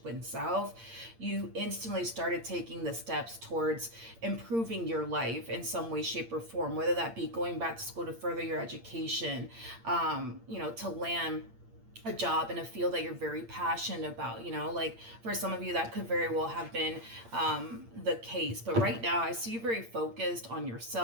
went south, you instantly started taking the steps towards improving your life in some way, shape, or form, whether that be going back to school to further your education, you know, to land a job in a field that you're very passionate about, you know, like for some of you that could very well have been the case. But right now I see you very focused on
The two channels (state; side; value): late; left; 8.7 ms